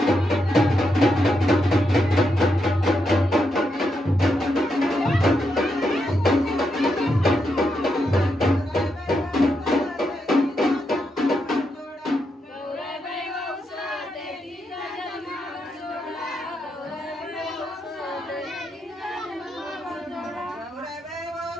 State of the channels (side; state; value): both; normal; correlation 0.82